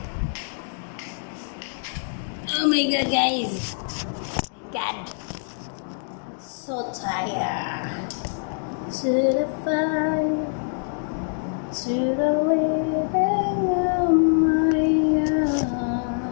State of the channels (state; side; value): silent; right; digital silence